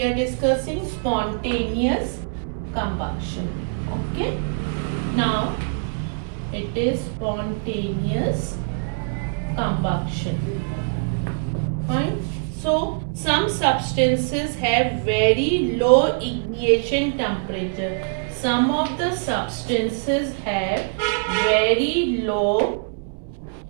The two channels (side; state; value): left; silent; 63 dB below the other